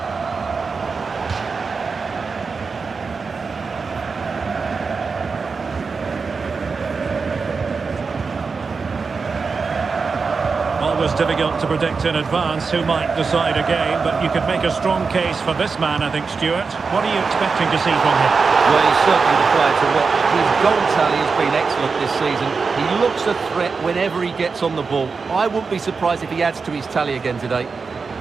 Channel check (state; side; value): quieter; left; 4.8 dB